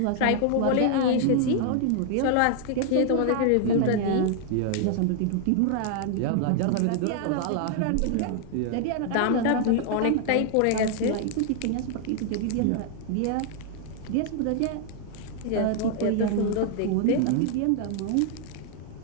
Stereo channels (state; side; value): different; both; correlation 0.00